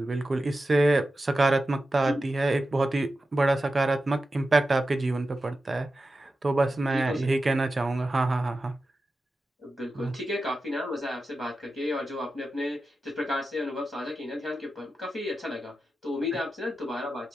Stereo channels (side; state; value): both; normal; correlation 0.92